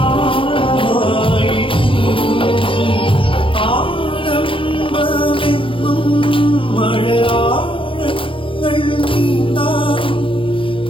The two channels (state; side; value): late; right; 0.25 ms